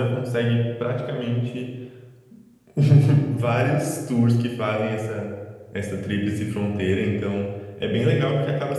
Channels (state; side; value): identical; both; correlation 1.00